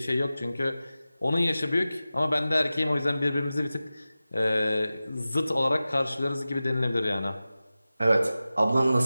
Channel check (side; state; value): both; inverted; correlation -0.95